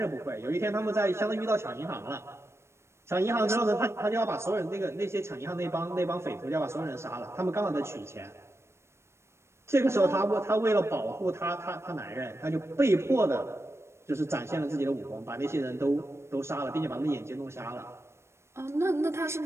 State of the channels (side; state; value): left; late; 0.13 ms